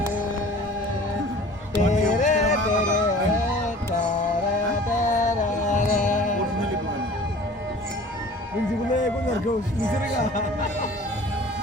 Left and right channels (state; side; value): normal; both; correlation 0.45